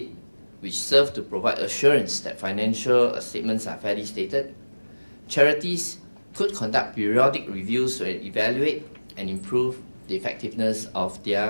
which serves to provide assurance that financial statements are fairly stated, charities could conduct periodic reviews to evaluate and improve the effectiveness of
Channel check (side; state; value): both; inverted; correlation -1.00